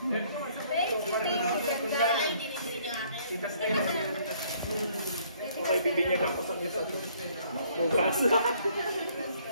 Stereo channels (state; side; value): inverted; both; correlation -0.62